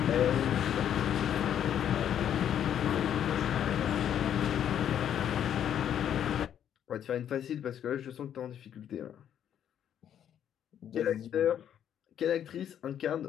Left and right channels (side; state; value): right; quieter; 9.7 dB